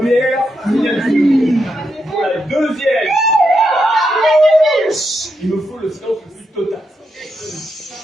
signature. Pour la deuxième, il me faut le silence le plus total.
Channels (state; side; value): normal; both; correlation 0.83